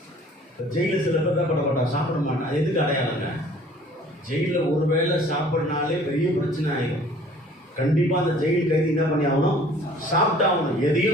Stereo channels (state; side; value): normal; both; correlation 0.52